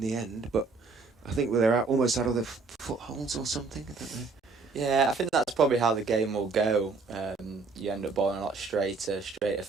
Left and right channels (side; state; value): left; quieter; 4.2 dB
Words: the end? But I think they're almost out of the footholds or something. I don't know. Yeah, I think that's probably how the game will go. You end up bowling a lot straighter